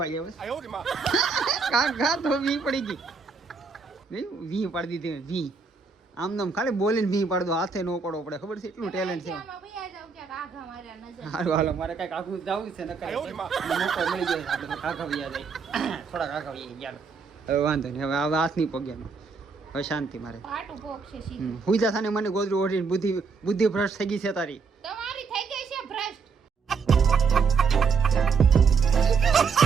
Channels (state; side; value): quieter; left; 5.1 dB